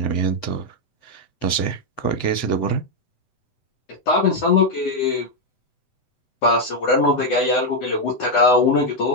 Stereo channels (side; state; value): right; late; 7.9 ms